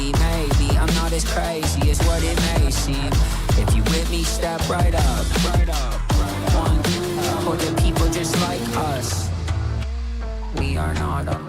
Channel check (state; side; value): identical; both; correlation 1.00